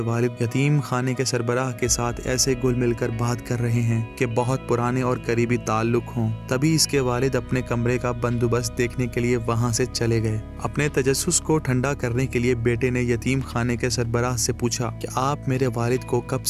یتیم خانے کے سربراہ کے ساتھ ایسے گل مل کر بات کر رہے ہیں کہ بہت پرانے اور قریبی تعلق ہوں۔ تبھی اس کے والد اپنے کمرے کا بندوبست دیکھنے کے لیے وہاں سے چلے گئے۔ اپنے تجسس کو ٹھنڈا کرنے کے لیے بیٹے نے یتیم خانے کے سربراہ سے پوچھا کہ آپ میرے والد کو کب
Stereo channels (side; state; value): both; identical; correlation 1.00